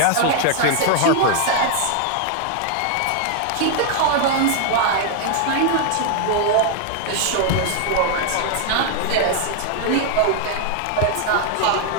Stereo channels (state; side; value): different; both; correlation 0.00